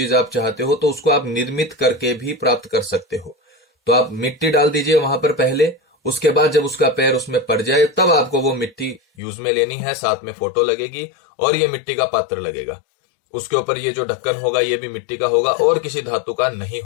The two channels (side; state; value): right; drops out; at 9.0 s